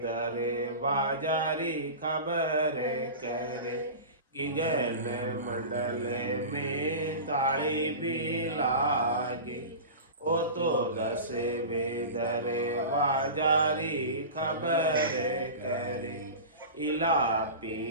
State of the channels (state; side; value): inverted; both; correlation -0.31